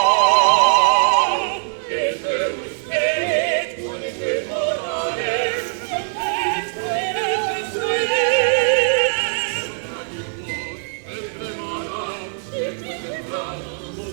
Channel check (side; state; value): left; silent; digital silence